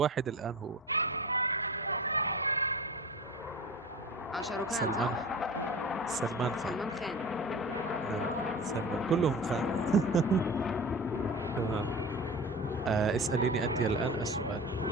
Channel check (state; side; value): normal; both; correlation 0.34